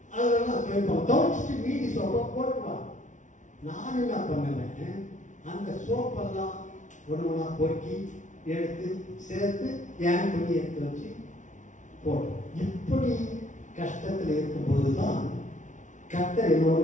அதெல்லாம் துவைப்போம். துவைச்சிட்டு மீதி சோப்பை போட்டுருவாங்க. நான் என்ன பண்ணுவேன்? அந்த சோப்பெல்லாம் ஒன்று பொறுக்கி எடுத்து சேர்த்து என் துணி எடுத்து வச்சு போட்டோம். இப்படி கஷ்டத்தில் இருக்கும்போது தான் கர்த்தர்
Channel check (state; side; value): late; right; 0.36 ms